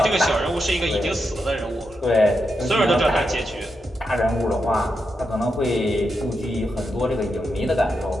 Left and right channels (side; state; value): both; normal; correlation 0.85